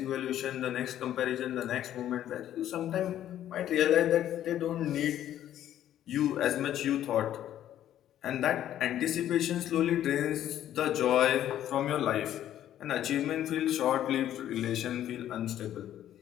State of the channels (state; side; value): quieter; right; 11.6 dB